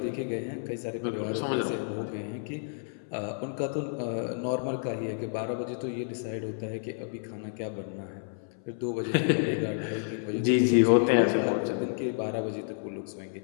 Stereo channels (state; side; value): silent; right; 58 dB below the other